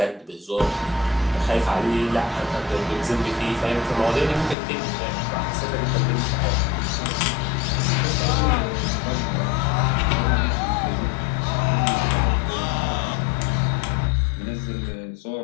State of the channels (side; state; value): right; drops out; at 4.5 s